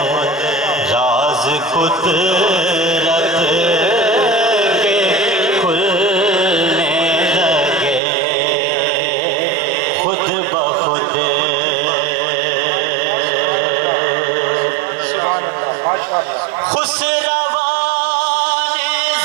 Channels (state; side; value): drops out; left; at 8.0 s